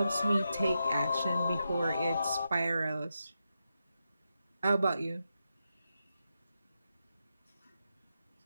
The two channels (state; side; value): inverted; both; correlation -0.87